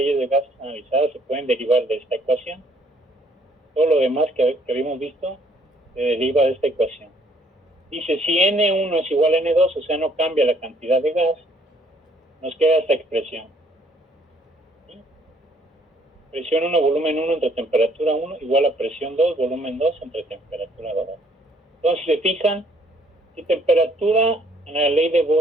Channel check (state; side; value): normal; both; correlation 0.64